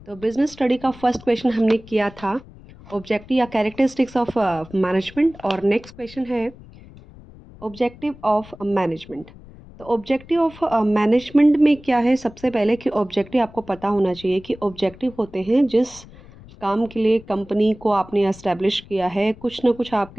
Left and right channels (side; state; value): left; noise; rumble, 20 dB below the sound